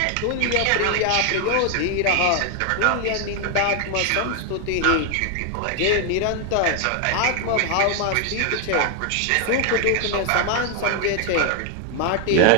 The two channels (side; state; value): both; different; correlation 0.00